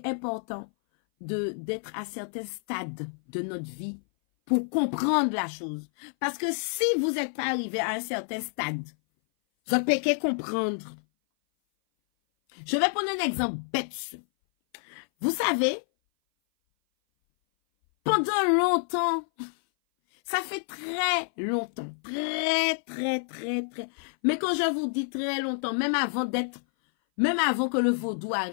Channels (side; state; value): right; silent; 58 dB below the other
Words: important d'être à certains stades de notre vie pour comprendre la chose. Parce que si vous n'êtes pas arrivé à un certain stade, vous ne pouvez pas comprendre. Je vais prendre un exemple bête. Vous savez, pendant longtemps, ça fait très longtemps, très, mais quand je vous dis très longtemps, même avant que le vaudou